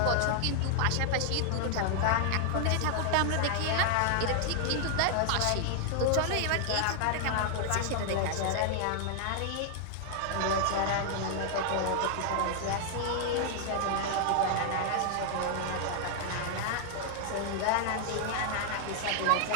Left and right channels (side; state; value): both; different; correlation 0.00